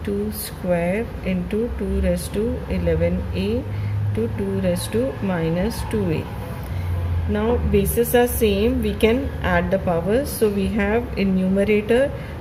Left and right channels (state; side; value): identical; both; correlation 1.00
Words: 2 square into 2 raised to 11a to 2 raised to minus 2a. Now bases are same, we can add the powers. So we have in numerator